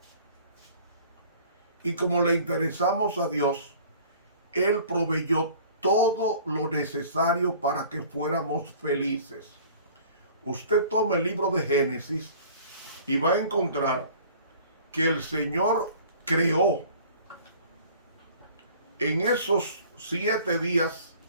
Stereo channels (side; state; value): both; inverted; correlation -0.49